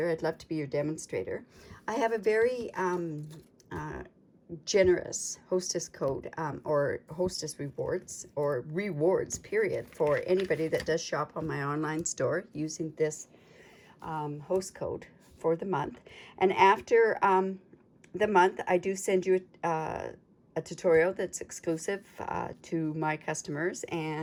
I'd love to be your demonstrator. I have a very generous hostess code or hostess rewards or rewards period for anybody that does shop on my online store using this host code for the month. And after the month, I do send you a tutorial that's exclusive to my customers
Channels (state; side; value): identical; both; correlation 1.00